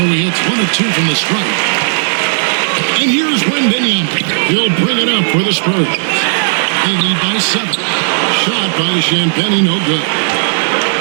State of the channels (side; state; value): left; silent; digital silence